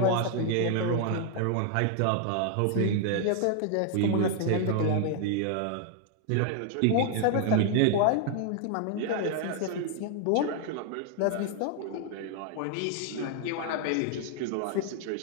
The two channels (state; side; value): different; both; correlation 0.00